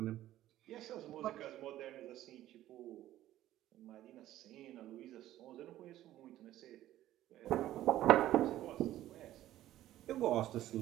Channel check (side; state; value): left; quieter; 13.8 dB